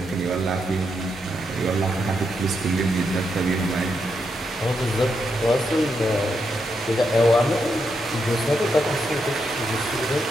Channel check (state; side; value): normal; both; correlation 0.82